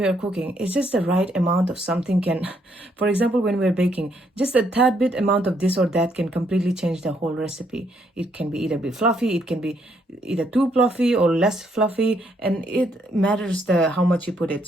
are cooking, it's just the right amount of something can, for example, when we're baking, just a tad bit amount of this or that can completely change the whole recipe. It can be either be fluffy, it can be either too fluffy or less fluffy, and it matters the how much you put it.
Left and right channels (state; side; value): normal; both; correlation 0.72